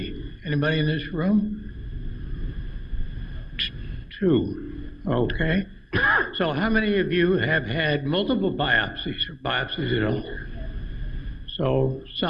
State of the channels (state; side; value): identical; both; correlation 1.00